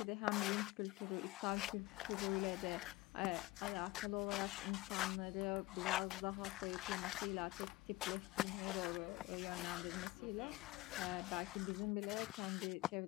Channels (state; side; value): quieter; right; 19.7 dB